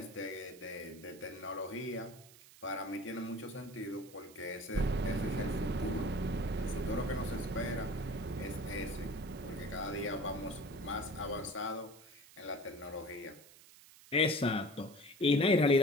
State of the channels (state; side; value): noise; right; hiss, 21 dB below the sound